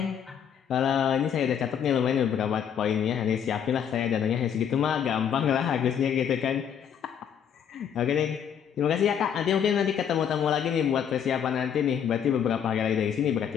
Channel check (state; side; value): quieter; right; 8.3 dB